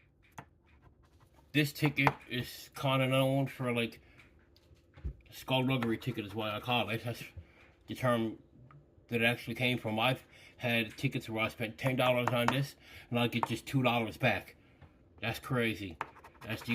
This ticket is kind of known for like skullduggery ticket is why I call it. That's the term that it actually came from. I've had tickets where I spent $10 on this and I get just $2 back. That's crazy. That's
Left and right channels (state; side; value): identical; both; correlation 1.00